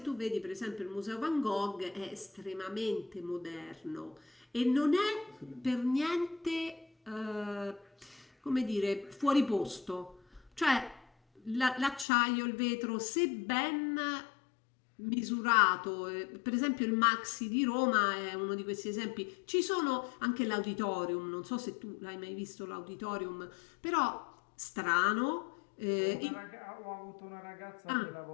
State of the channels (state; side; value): drops out; right; at 12.1 s